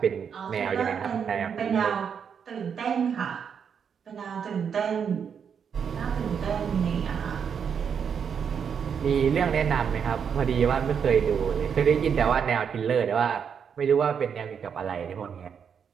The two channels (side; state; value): left; quieter; 7.2 dB